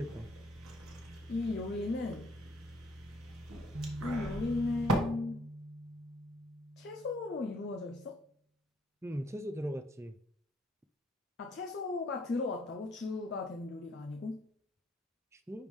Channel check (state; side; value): normal; both; correlation 0.66